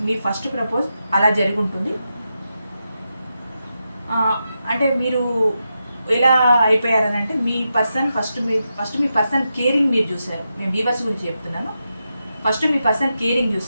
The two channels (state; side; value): inverted; both; correlation -0.88